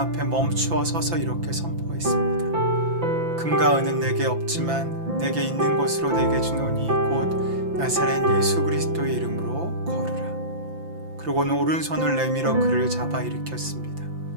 앞에 멈추어 서서 이렇게 선포했습니다. 금과 은은 내게 없지만 내게 있는 것으로 내게 주노니 곧 나사렛 예수 그리스도의 이름으로 걸으라. 그러고는 오른손을 내밀어 그를 잡아 일으켰습니다.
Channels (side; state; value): left; late; 5.9 ms